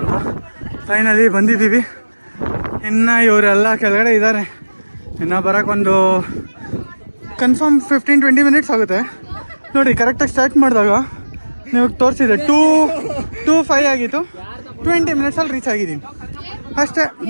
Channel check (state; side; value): inverted; both; correlation -1.00